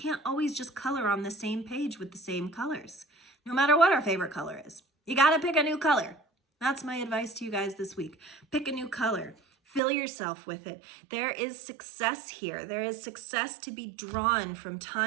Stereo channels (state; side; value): drops out; left; at 9.8 s